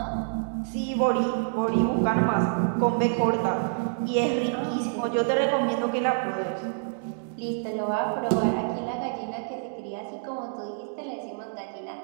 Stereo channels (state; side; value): silent; left; digital silence